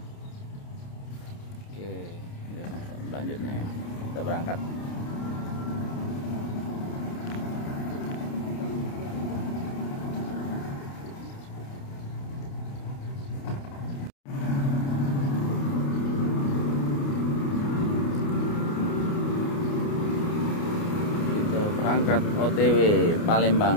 Oke, selanjutnya ya, kita berangkat. Berangkat OTW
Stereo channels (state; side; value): late; right; 29 ms